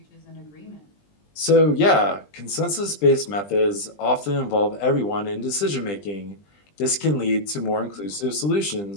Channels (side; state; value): right; late; 20 ms